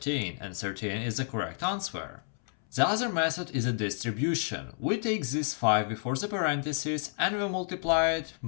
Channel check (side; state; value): right; silent; 58 dB below the other